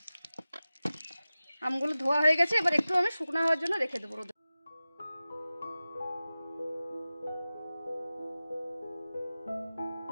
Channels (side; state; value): both; inverted; correlation -0.96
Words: আমগুলো ধোয়া হয়ে গেছে, এবার একটু আমি শুকনো হওয়ার জন্য রেখে দেবো রোদে।